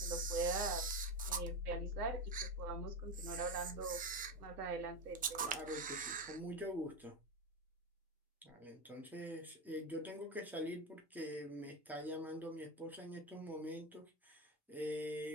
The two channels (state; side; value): normal; both; correlation 0.16